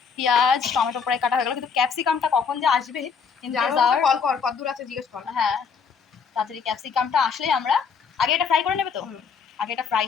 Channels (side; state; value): right; quieter; 6.0 dB